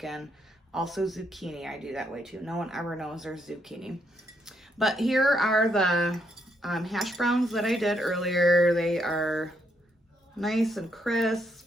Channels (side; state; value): both; normal; correlation 0.76